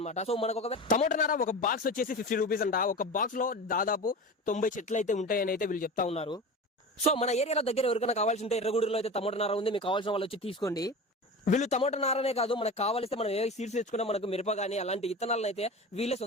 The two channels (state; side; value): normal; both; correlation 0.30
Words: సో మనకు ఒక టమోటా నార ఒక బాక్స్ వచ్చేసి 50 రూపీస్ అంట. ఒక బాక్స్ లో దాదాపు 90 చెట్లు అయితే ఉంటాయని అయితే వీళ్ళు చెప్తా ఉన్నారు. సో మన ఏరియాలో దగ్గర ఎవరికైనా కావాల్సి ఉంటే ఎర్రగూడూరులో అయితే టమోటా నార ఉంది. మీకు కావాల్సిన వాళ్ళు వచ్చి తీసుకోండి. వీళ్ళు టమోటా నారనే కాదు, మనకు కావాలిస్తే మనం ఏ సీడ్స్ తెచ్చుకున్నా మనకు మిరప కానీ అలాంటి విత్తనాలను అయితే వీళ్ళే